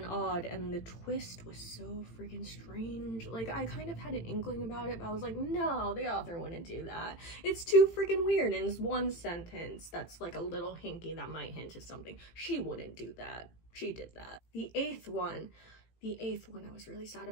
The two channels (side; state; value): right; late; 18 ms